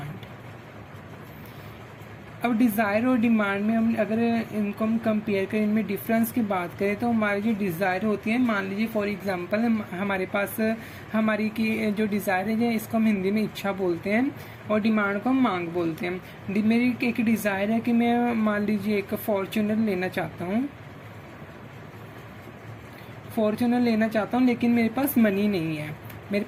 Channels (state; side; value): identical; both; correlation 1.00